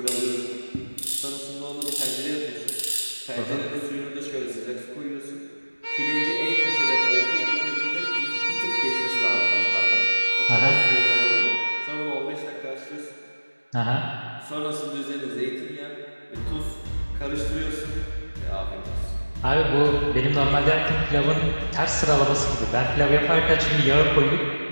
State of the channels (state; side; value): inverted; both; correlation -1.00